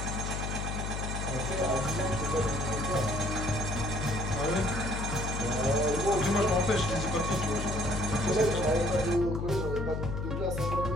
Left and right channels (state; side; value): noise; left; hum, 3 dB below the sound